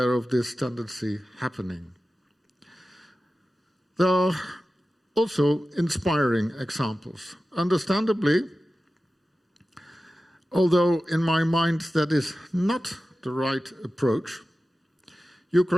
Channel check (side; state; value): both; normal; correlation 0.94